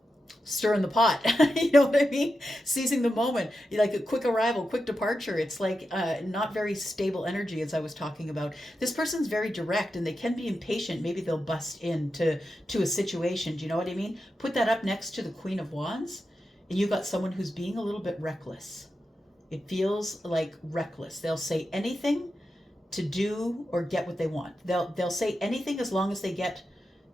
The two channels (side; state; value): both; normal; correlation 0.89